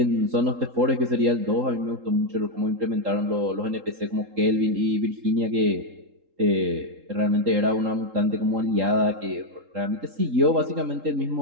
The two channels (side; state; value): left; late; 3.7 ms